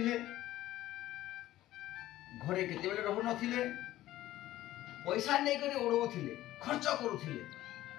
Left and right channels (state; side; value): quieter; right; 14.8 dB